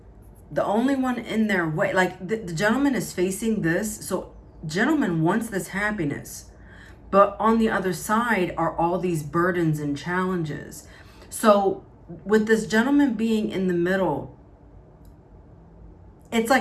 the only one in their way, like the gentleman is facing this, so gentleman wants this happiness, but on the other side are all these burdens and challenges. So with this gentleman being in the middle, it's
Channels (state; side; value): identical; both; correlation 1.00